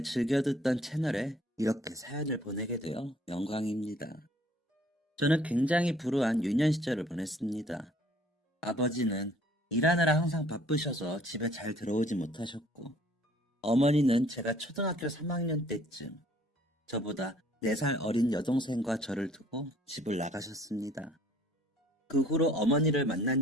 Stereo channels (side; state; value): both; normal; correlation 0.58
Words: 즐겨 듣던 채널에 이렇게 사연을 보내게 되어 영광입니다. 저는 굉장히 불우한 유년 시절을 보냈습니다. 아버지는 일하느라 항상 바쁘셔서 집에 잘 들어오지 못하셨고, 어머니는 제가 초등학교 3학년 때쯤 저보다 4살 어린 여동생과 저를 두고 집을 나가셨습니다. 그 후로 어머니를 만난